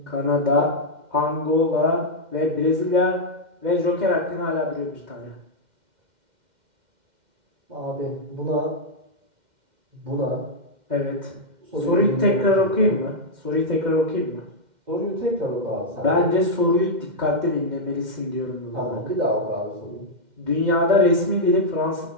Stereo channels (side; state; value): left; late; 2.1 ms